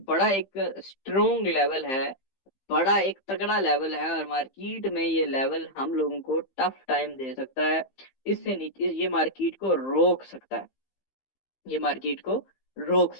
बड़ा एक स्ट्रोंग लेवल है, बड़ा एक तगड़ा लेवल है, और मार्केट में ये लेवल हम लोगों को टफ टाइम दे सकता है। इससे नीचे ये मार्केट को रोक सकता है, ये मार्केट को रोक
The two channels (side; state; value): right; late; 15 ms